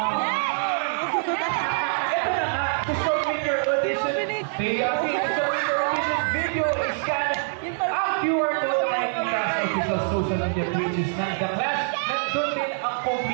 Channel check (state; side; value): silent; left; digital silence